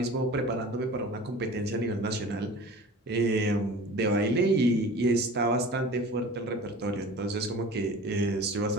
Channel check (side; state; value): both; normal; correlation 0.40